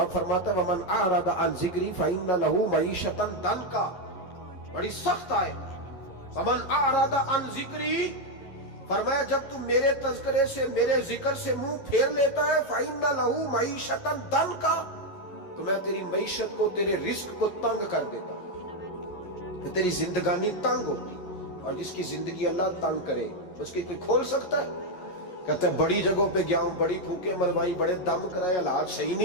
फरमाता है, वमन आरदा अन ज़िक्री फइन्न लहू मईशतन दनका, बड़ी सख्त आयत। वमन आरदा अन ज़िक्री, फरमाया जब तू मेरे तज़किरे से, मेरे जिक्र से मुंह फेर लेता है, फइन्न लहू मईशतन दनका, तो मैं तेरी मईशत को, तेरे रिस्क को तंग कर देता हूं, तो तेरी जिंदगानी तंग होती। और जिसकी जिंदगी अल्लाह तंग करे उसकी कोई खोल सकता है? कहते हैं बड़ी जगहों पे गया हूं, बड़ी फूके मरवाई, बड़े दम कराए, हालात सही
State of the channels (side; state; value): right; late; 11 ms